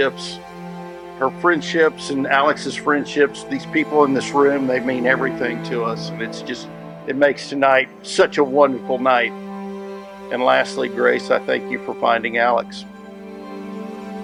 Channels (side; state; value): both; identical; correlation 1.00